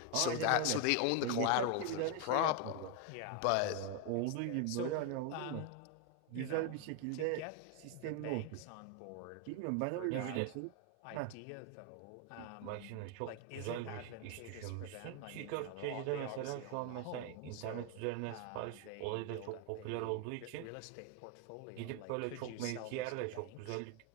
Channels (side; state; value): both; different; correlation 0.01